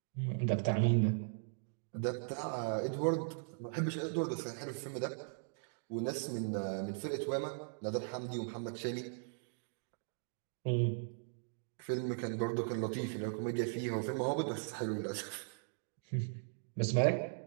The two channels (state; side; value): silent; left; digital silence